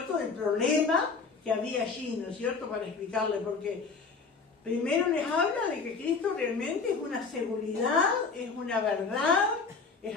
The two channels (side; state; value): right; quieter; 4.7 dB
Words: del problema que había allí, ¿no es cierto?, para explicarle, porque primero les habla de que Cristo realmente es una seguridad, es una verdad, es